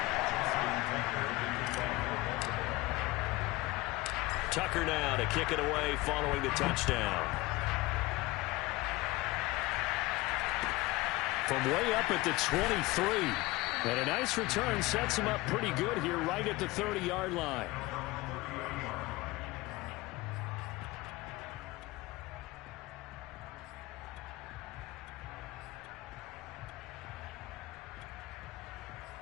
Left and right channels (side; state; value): right; quieter; 20.6 dB